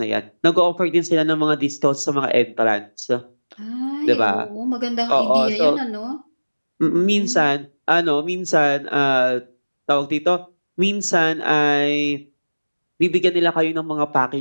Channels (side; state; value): both; inverted; correlation -1.00